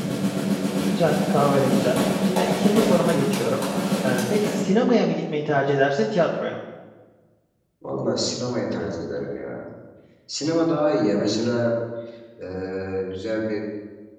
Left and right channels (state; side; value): identical; both; correlation 1.00